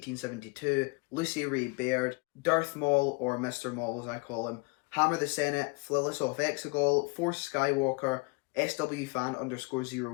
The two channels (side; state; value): right; quieter; 30.0 dB